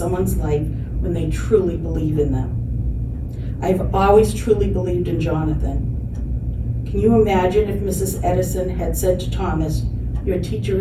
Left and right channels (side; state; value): both; identical; correlation 1.00